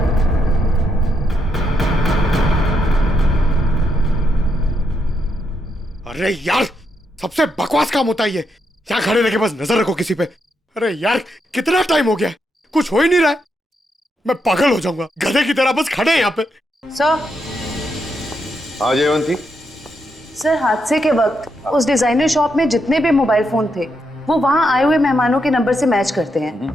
अरे यार, सबसे बकवास काम होता है ये। यहाँ खड़े रह के बस नजर रखो किसी पे। अरे यार, कितना टाइम हो गया, कुछ हो ही नहीं रहा है। मैं पागल हो जाऊंगा, गधे की तरह बस खड़े हैं यहाँ पे। सर। हाँ जयवंती। सर हादसे के वक्त उस डिजाइनर शॉप में जितने भी मोबाइल फोन थे वो वहां आए हुए मेहमानों के नंबर से मैच करते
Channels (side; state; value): both; normal; correlation 0.80